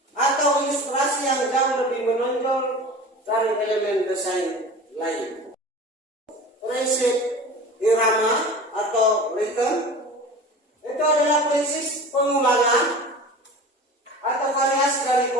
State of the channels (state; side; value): normal; both; correlation 0.36